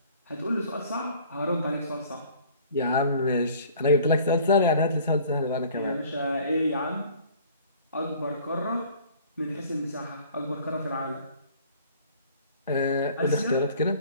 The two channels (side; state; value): both; inverted; correlation -0.51